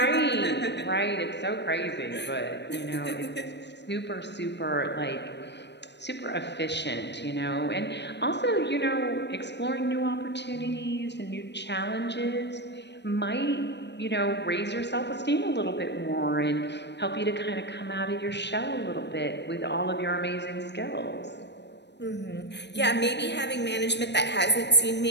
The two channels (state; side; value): late; right; 0.50 ms